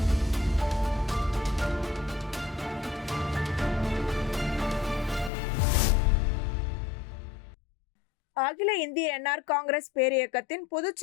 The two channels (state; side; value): drops out; right; at 5.3 s